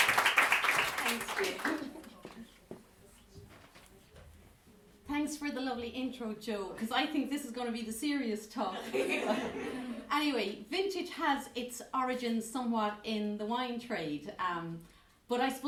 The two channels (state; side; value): identical; both; correlation 1.00